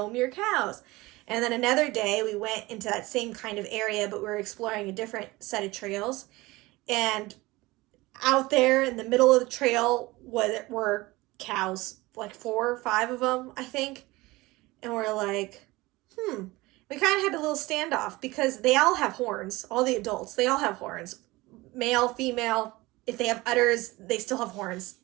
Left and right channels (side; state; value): left; quieter; 20.9 dB